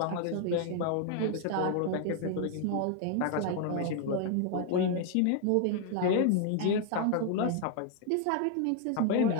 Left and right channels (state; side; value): different; both; correlation 0.00